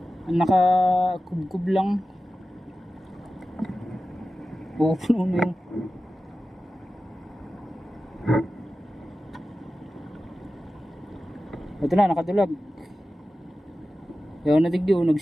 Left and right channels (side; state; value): both; normal; correlation 0.94